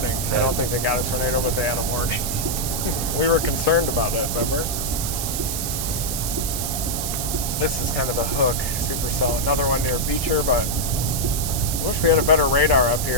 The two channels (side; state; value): right; noise; hiss, 3 dB below the sound